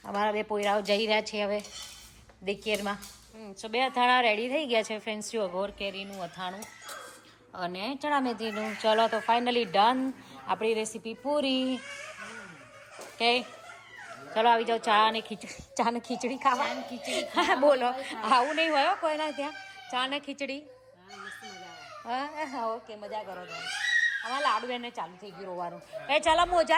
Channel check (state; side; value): identical; both; correlation 1.00